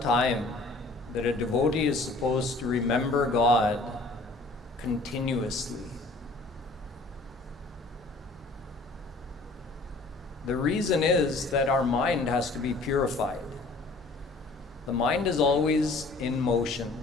time that a devotee is supposed to remember God continuously. The reason is that our mind has to be purified. The mind is always in motion.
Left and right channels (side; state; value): right; quieter; 3.3 dB